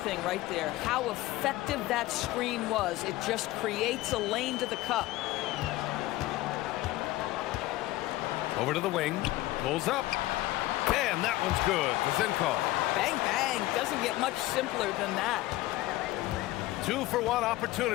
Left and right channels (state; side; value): quieter; right; 17.4 dB